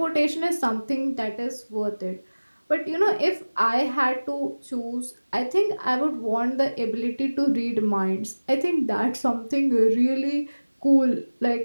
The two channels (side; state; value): both; inverted; correlation -1.00